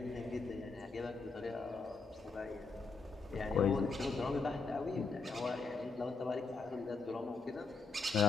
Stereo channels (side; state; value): right; quieter; 4.0 dB